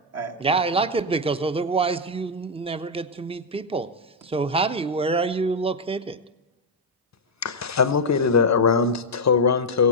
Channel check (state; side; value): normal; both; correlation -0.01